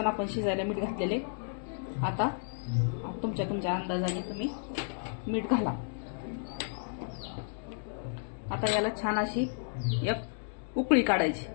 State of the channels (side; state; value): right; silent; 56 dB below the other